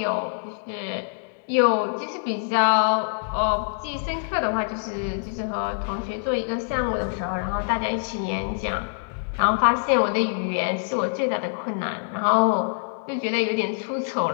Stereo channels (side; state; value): right; silent; digital silence